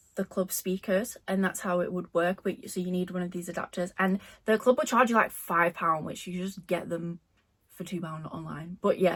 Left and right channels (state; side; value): identical; both; correlation 1.00